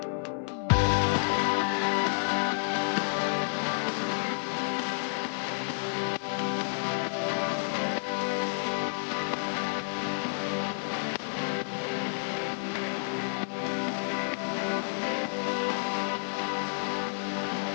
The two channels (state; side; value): silent; right; 58 dB below the other